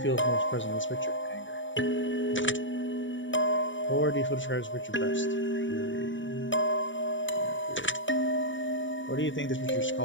feel is most present in this picture? Anger. What word do you feel describes this picture best? Fury. What do you think this picture is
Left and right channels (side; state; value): right; late; 0.55 ms